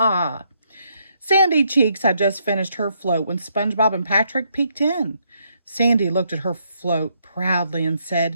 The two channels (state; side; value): inverted; both; correlation -0.74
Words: Sandy Cheeks had just finished her float when SpongeBob and Patrick peeked in. Sandy looked at her float proudly and